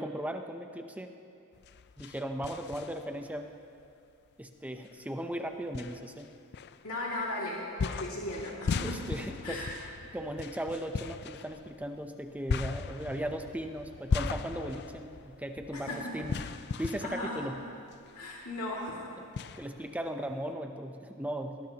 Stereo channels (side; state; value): both; normal; correlation 0.62